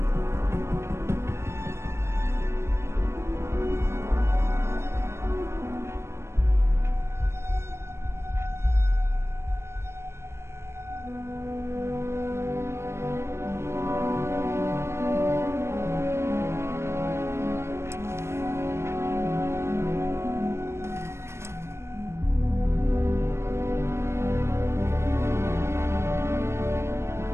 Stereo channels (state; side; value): late; left; 0.13 ms